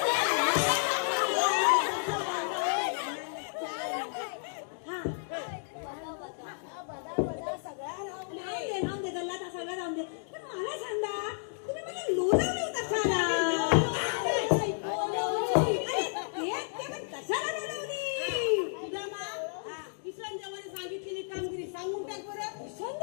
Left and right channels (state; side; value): silent; right; digital silence